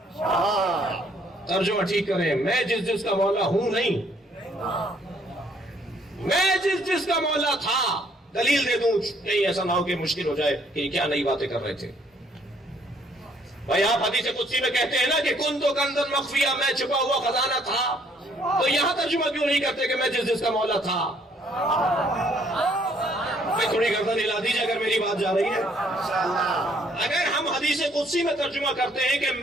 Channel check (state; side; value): normal; both; correlation 0.65